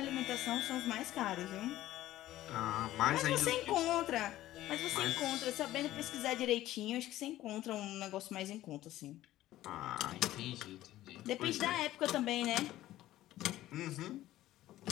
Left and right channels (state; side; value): quieter; right; 14.8 dB